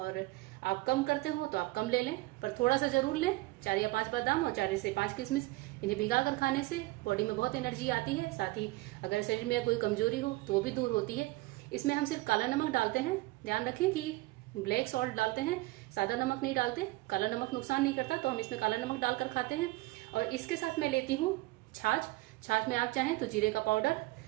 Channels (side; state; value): left; quieter; 20.8 dB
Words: आप कम करते हो तो आप कम ले लें, पर थोड़ा सा ज़रूर लें। 4 या 5 बादाम और 4 से 5 किशमिश, इन्हें भिगा कर खाने से बॉडी में बहुत एनर्जी आती है। साथ ही अगर शरीर में कोई कमजोरी हो तो वो भी दूर होती है। इसमें हम सिर्फ काला नमक डालते हैं। ध्यान रखें कि ब्लैक सॉल्ट डालते हैं, सादा नमक नहीं डालते। काला नमक नुकसान नहीं करता, तो हम इसमें काला नमक डालकर खाते हैं। और इसके साथ मैं लेती हूँ छाछ। छाछ में आप चाहें तो जीरे का पाउडर